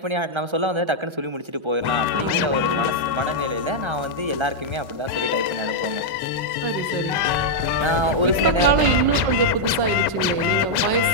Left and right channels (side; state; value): left; late; 1.3 ms